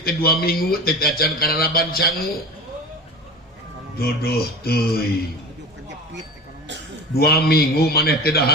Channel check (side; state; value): both; normal; correlation 0.32